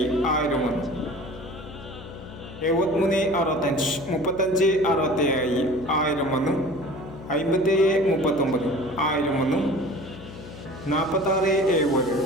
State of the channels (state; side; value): noise; left; hum, 15 dB below the sound